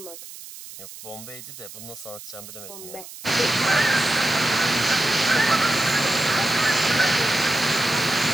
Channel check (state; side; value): noise; right; hiss, 15 dB below the sound